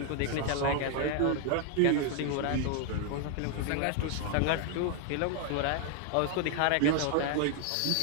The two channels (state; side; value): different; both; correlation 0.00